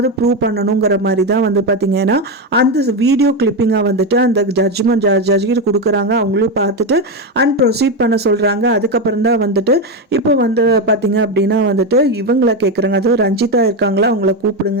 ப்ரூவ் பண்ணணுங்கிற மாதிரி தான் வந்து பார்த்தீங்கன்னா அந்த வீடியோ கிளிப்பிங்காக வந்துட்டு அந்த ஜட்ஜ்கிட்ட கொடுக்குறாங்க. அவங்களும் பார்த்துட்டு அண்ட் ப்ரொசீட் பண்ண சொல்கிறாங்க. அதுக்கப்புறம் தான் வந்துட்டு இப்போ வந்து பார்த்தீங்க அப்படின்னா வந்துட்டு இவங்கள கேட்குறாங்க, அதாவது ரஞ்சிதா இருக்காங்களா அவங்கள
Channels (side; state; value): both; normal; correlation 0.11